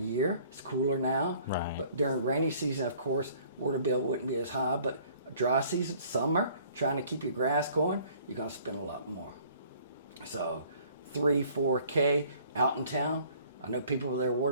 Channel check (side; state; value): both; inverted; correlation -0.56